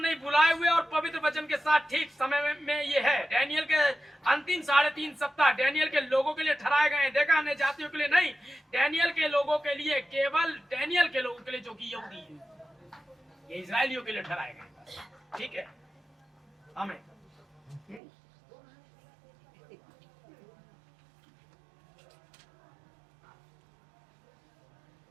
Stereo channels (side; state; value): left; drops out; at 18.0 s